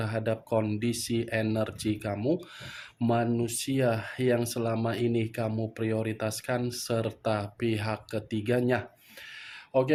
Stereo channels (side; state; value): both; identical; correlation 1.00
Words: kondisi energi kamu, manusia yang selama ini kamu prioritaskan, serta pihak ketiganya.